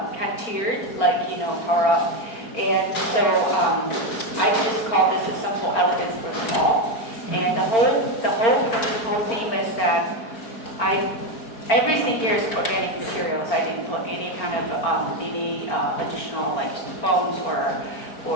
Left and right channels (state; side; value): late; right; 4.4 ms